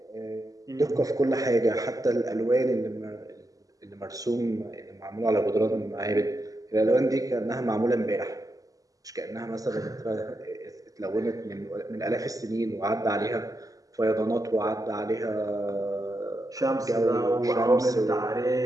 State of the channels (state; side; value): late; left; 0.17 ms